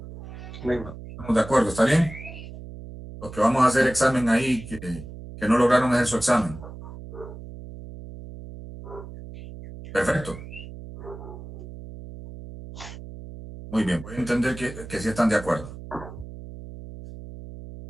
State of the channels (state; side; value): noise; right; hum, 13 dB below the sound